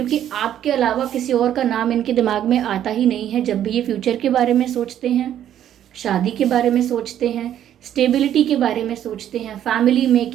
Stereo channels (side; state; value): left; quieter; 10.8 dB